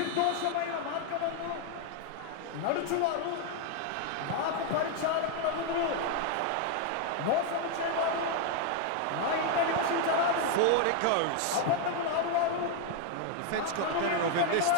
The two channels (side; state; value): both; different; correlation 0.00